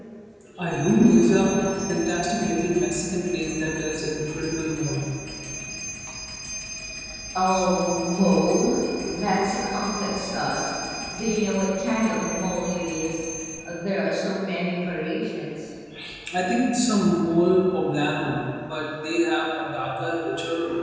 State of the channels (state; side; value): identical; both; correlation 1.00